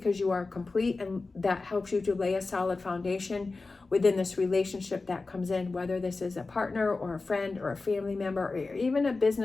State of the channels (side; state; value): right; quieter; 3.7 dB